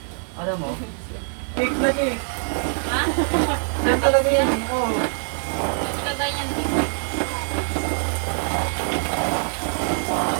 Alam mo? Cake na cake. Ha? Yan talaga yan. Oo. Ito ba yan dito?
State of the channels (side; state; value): left; silent; digital silence